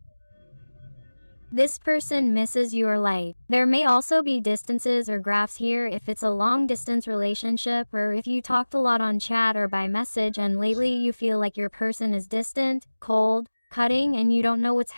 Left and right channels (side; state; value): both; inverted; correlation -1.00